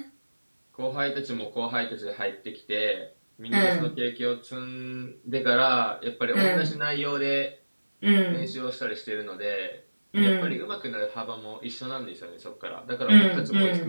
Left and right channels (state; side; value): inverted; both; correlation -1.00